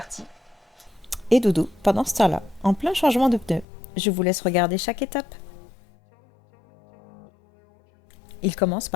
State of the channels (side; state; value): right; drops out; at 3.7 s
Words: Et Doudou, pendant ce temps-là, en plein changement de pneu. Je vous laisse regarder chaque étape. Il commence